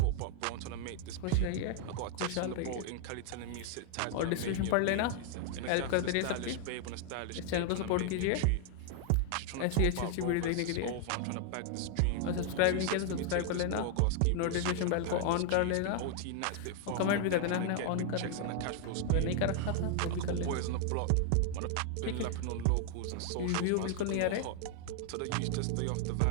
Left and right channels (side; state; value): both; different; correlation 0.00